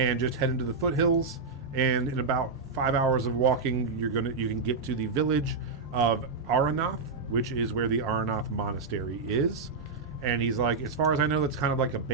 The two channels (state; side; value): quieter; left; 4.3 dB